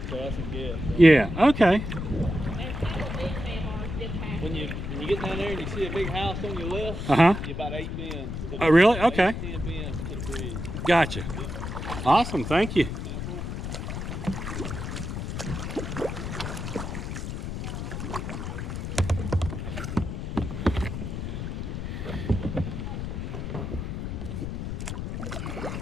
So that's a guess. So. Yeah. Okay. When you get down there and you see a big house on your left, you're about 8 bends. Oh, really? Okay. 10 bends to the bridge. Gotcha. Awesome. Thank you.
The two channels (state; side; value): noise; left; rumble, 5 dB below the sound